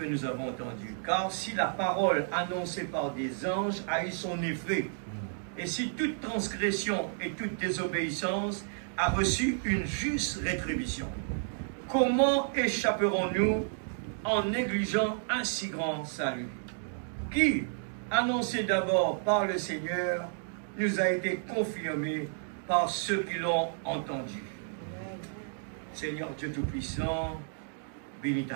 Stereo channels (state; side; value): silent; left; digital silence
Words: nous avons entendu. Car si la parole annoncée par des anges a eu son effet, et si toute transgression et toute désobéissance a reçu une juste rétribution, comment échapperons-nous en négligeant un si grand salut, qui, annoncé d'abord par le Seigneur, nous a été confirmé par ceux qui l'ont entendu. Seigneur Dieu Tout-Puissant, bénis